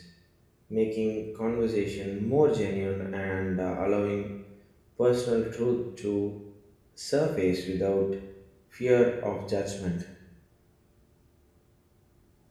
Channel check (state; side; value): identical; both; correlation 1.00